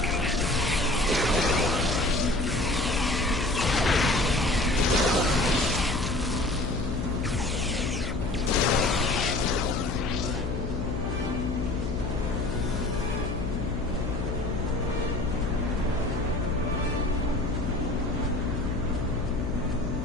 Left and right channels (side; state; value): left; noise; hum, 3 dB below the sound